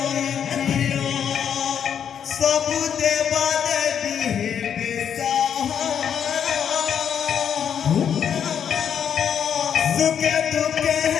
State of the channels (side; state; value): right; quieter; 8.3 dB